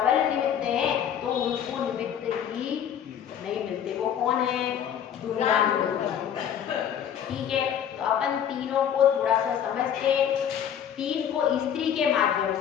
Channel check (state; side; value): quieter; right; 9.1 dB